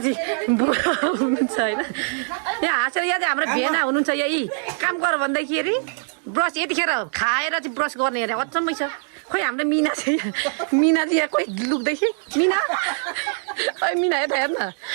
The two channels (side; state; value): left; silent; digital silence